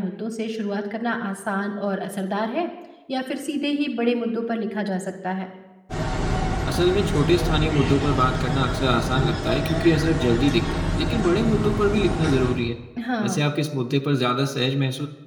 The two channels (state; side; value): identical; both; correlation 1.00